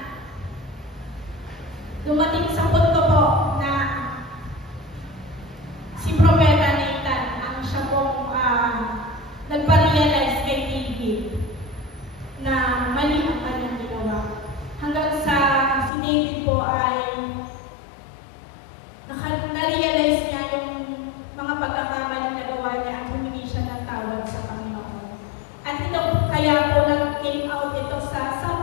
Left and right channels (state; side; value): drops out; right; at 15.9 s